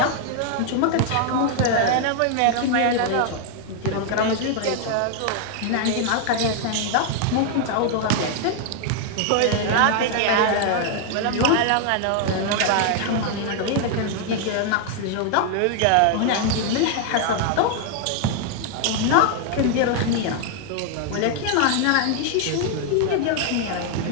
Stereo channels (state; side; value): different; both; correlation 0.00